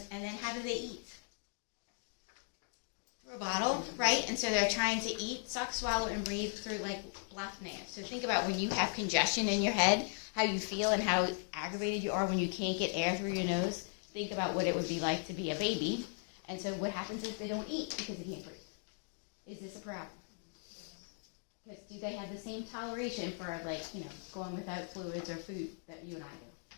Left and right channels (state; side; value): silent; right; 53 dB below the other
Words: and then how do they eat? Through a bottle, right? And so they're trying to eat, suck, swallow, and breathe through like blocked nails. So think about when you have congestion in your head, how you feel and how aggravated you are when you can't get air through your nose. Think about what it would be like to be a baby. And so what happens is they don't eat because they can't breathe. Is this a problem? Because do they have the same toleration for, going without fluids or food that you and I